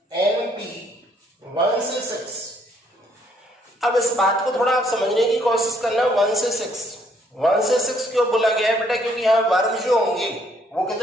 NP 1 से 6। अब इस बात को थोड़ा आप समझने की कोशिश करना, 1 से 6 क्यों बोला गया है बेटा, क्योंकि यहाँ वर्ग जो होंगे वो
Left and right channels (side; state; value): both; normal; correlation 0.67